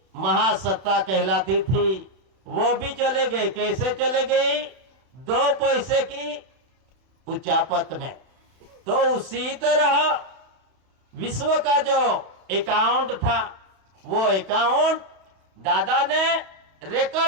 महासत्ता कहलाती थी, वो भी चले गए। कैसे चले गई, 2 पैसे की उचापत में। तो उसी तरह विश्व का जो अकाउंट था, वो अकाउंट दादा ने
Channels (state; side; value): late; left; 31 ms